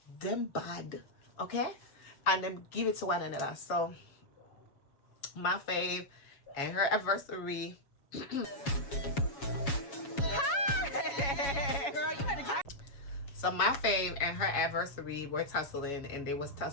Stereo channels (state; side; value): late; right; 7.2 ms